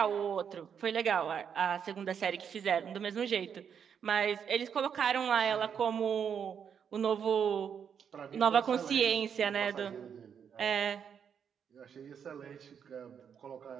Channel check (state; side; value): quieter; left; 7.6 dB